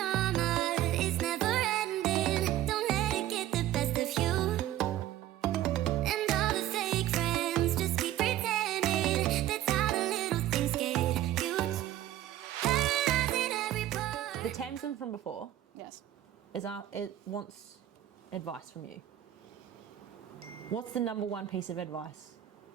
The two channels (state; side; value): quieter; left; 13.1 dB